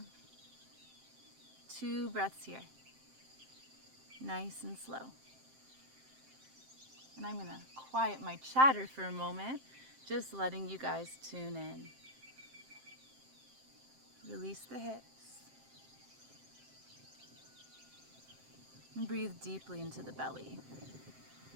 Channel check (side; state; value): left; late; 7.6 ms